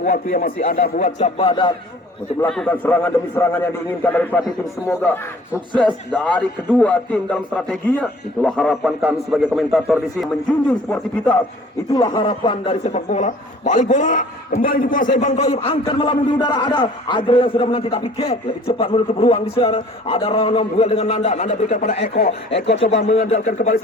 waktu yang masih ada buat Cap Badak untuk melakukan serangan demi serangan yang diinginkan dari pelatih tim. Semoga sukses dari kedua tim dalam strateginya. Itulah harapan kami sebagai komentator di sini, menjunjung sportivitas. Itulah harapan dari sepak bola. Balik bola kembali dikuasai Bang Toib, angkat melambung di udara, ada Adriel yang sudah menanti tapi Kek lebih cepat menutup ruang di sana. Ada Ronom duel dengan Nanda berikan pada Eko coba mengandalkan kembali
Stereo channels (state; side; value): normal; both; correlation 0.51